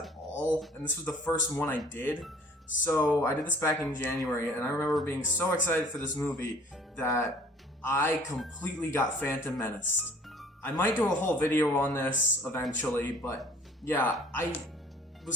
all, and this was the first one I did. So I did this back in January, and I remember being so excited for this movie that I completely got Phantom Menaced. I might do a whole video on this eventually, but yeah, I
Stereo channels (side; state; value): both; normal; correlation 0.53